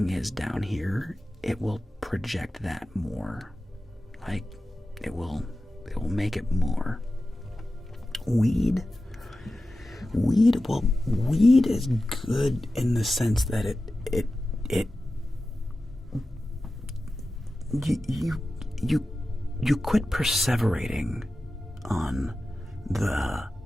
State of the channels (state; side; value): normal; both; correlation 0.94